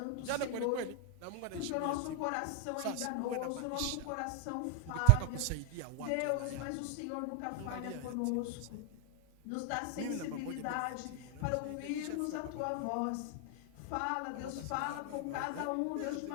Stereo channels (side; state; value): both; different; correlation 0.00